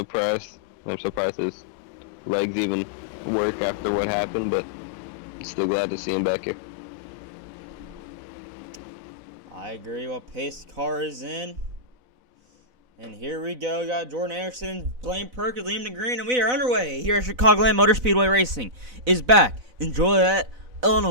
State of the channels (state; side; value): late; left; 4.0 ms